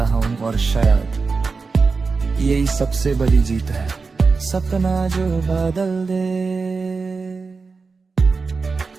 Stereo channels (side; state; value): left; quieter; 4.5 dB